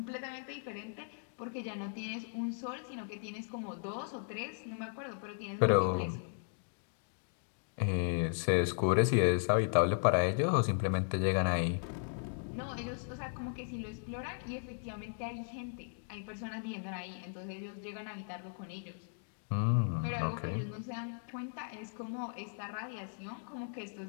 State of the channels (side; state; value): right; silent; digital silence